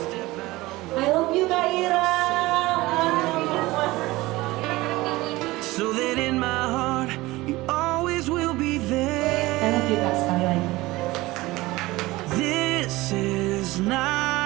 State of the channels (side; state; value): left; quieter; 19.7 dB